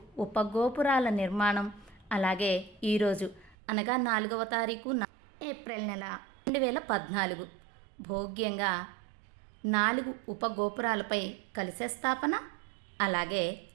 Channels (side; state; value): left; drops out; at 3.6 s